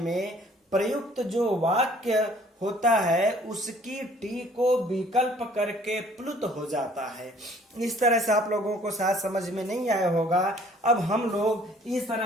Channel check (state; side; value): normal; both; correlation 0.57